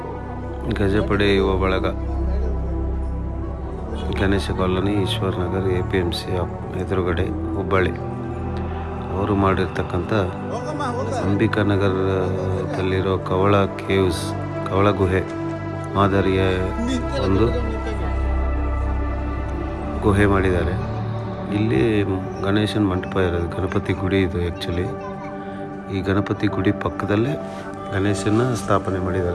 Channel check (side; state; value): both; identical; correlation 1.00